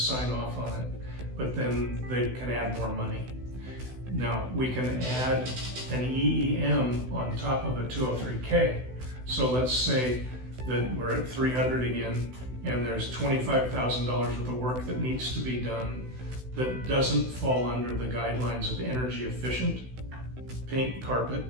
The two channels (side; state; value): left; late; 16 ms